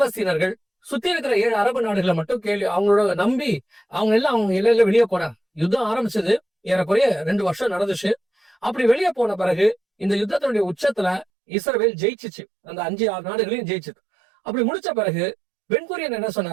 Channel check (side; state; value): left; drops out; at 11.2 s